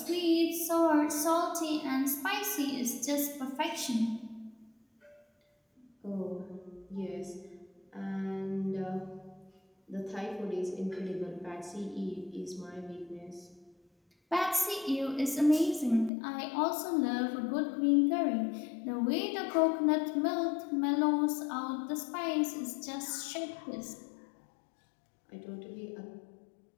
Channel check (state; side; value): drops out; right; at 16.1 s